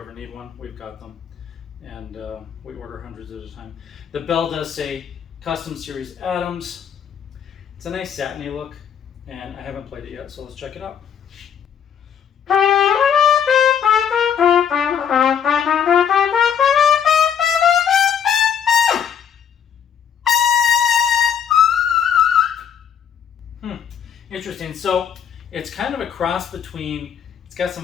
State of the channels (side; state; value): right; quieter; 8.1 dB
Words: ever need one, we've got them. And we order hundreds at a time. The bell does say Custom Series Adams. It's a nice satiny look, and I haven't played it yet, so let's check it out. Interesting. So it's kind of a cross between, it's got